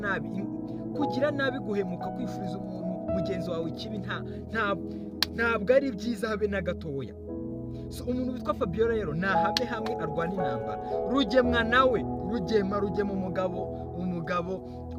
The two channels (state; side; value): identical; both; correlation 1.00